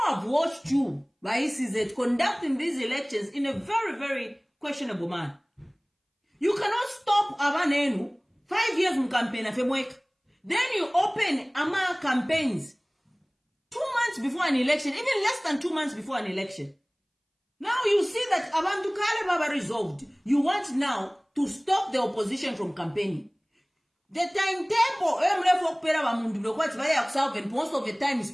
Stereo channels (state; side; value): identical; both; correlation 1.00